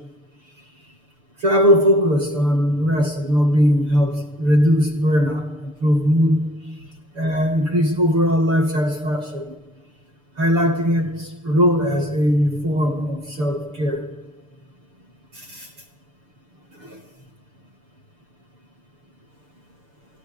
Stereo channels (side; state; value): left; late; 6.8 ms